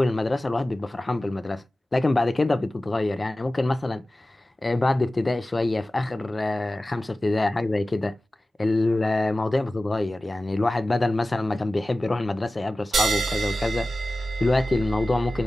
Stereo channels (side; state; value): both; normal; correlation 0.96